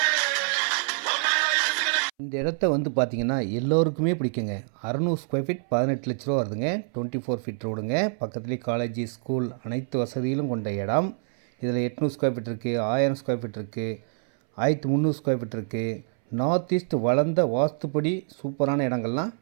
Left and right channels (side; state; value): left; silent; 61 dB below the other